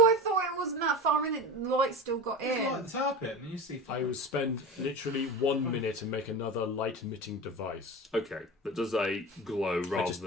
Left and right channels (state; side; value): normal; both; correlation 0.30